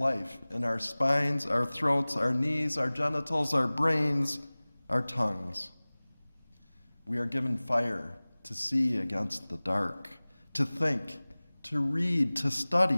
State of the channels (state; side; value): inverted; both; correlation -1.00